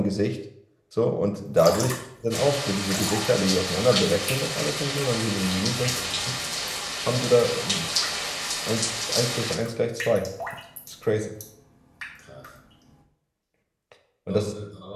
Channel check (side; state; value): both; identical; correlation 1.00